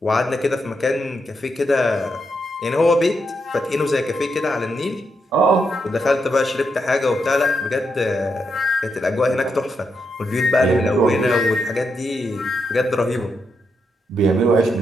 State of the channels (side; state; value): both; normal; correlation 0.82